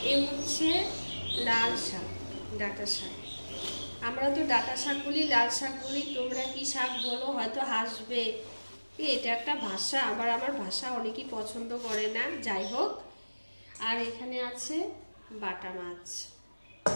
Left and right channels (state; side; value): inverted; both; correlation -1.00